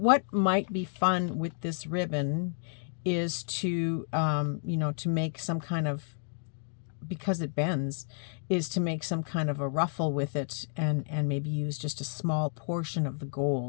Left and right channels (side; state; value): right; silent; digital silence